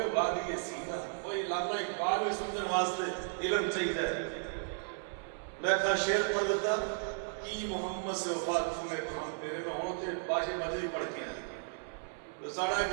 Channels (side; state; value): left; silent; digital silence